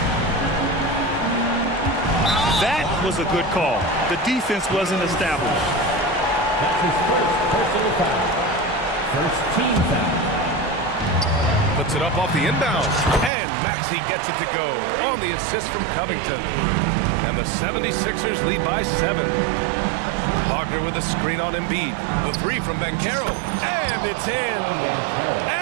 That was a good call. The defense wasn't established. That's his first personal foul. First team foul. Puts it up off the inbound. And Maxey gets it to go on the assist from Covington. And the 76ers lead by 7. Wagner with a screen on Embiid. The three from Banchero. And it's in.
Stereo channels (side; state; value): left; drops out; at 13.3 s